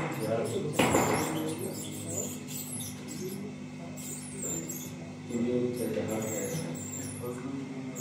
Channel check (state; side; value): identical; both; correlation 1.00